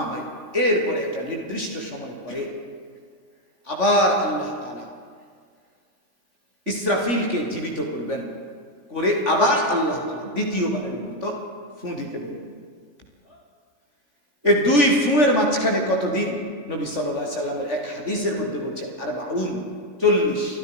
ভাই, এরপরে একটা নির্দিষ্ট সময় পরে আবার আল্লাহ তাআলা ইসরাফিলকে জীবিত করবেন, করে আবার আল্লাহ তাআলা দ্বিতীয়বারের মতো ফু দিতে দেবেন। এই 2 ফুঁয়ের মাঝখানে কতদিন? নবী সাল্লাল্লাহু আলাইহি সাল্লামের এক হাদিসের মধ্যে বলছে 40।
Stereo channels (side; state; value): left; late; 3.5 ms